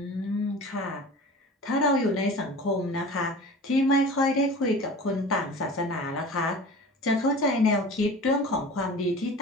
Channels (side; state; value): both; normal; correlation 0.38